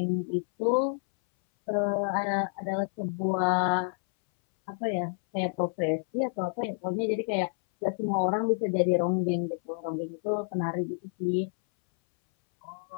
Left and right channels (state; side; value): silent; right; 59 dB below the other